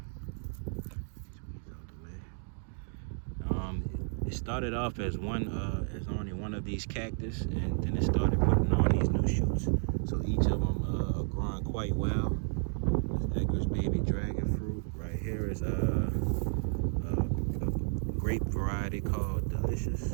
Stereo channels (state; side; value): silent; left; 56 dB below the other